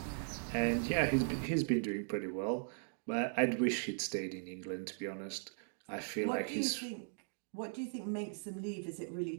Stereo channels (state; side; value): silent; left; digital silence